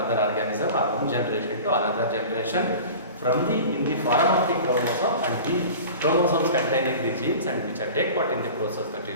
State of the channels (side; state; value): both; inverted; correlation -0.38